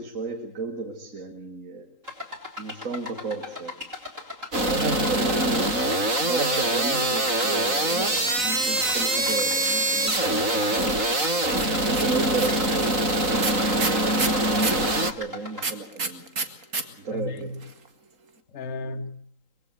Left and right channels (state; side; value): late; left; 3.8 ms